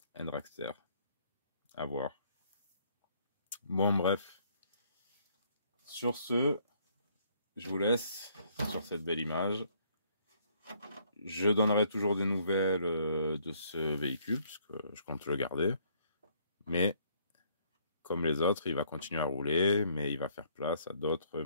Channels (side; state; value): both; inverted; correlation -0.65